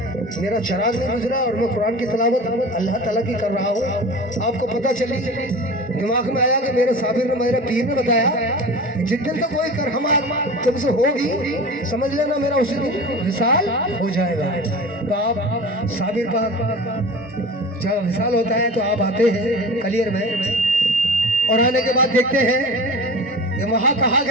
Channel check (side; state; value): both; normal; correlation 0.35